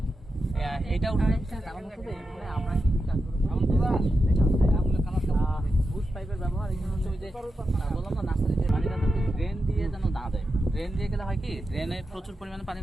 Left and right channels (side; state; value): both; normal; correlation 0.89